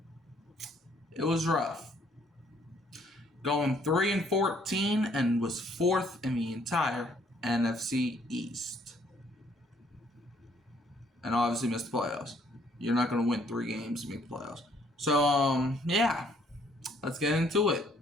it was rough. Going 3-14 and was fourth in the entire NFC East. And obviously missed the playoffs. You're not going to win 3 games to make the playoffs. So, yeah. Let's get into it.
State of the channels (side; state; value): both; normal; correlation 0.64